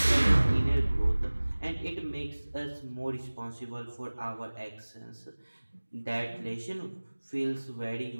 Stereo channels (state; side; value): inverted; both; correlation -1.00